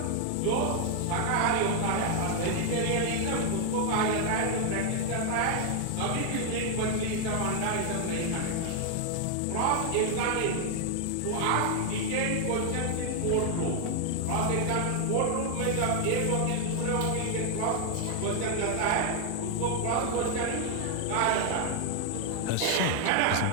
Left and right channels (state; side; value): different; both; correlation 0.00